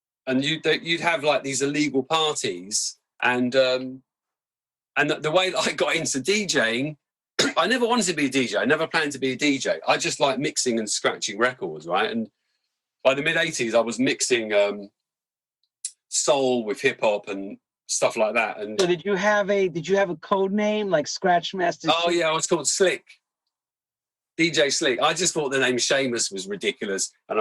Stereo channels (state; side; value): identical; both; correlation 1.00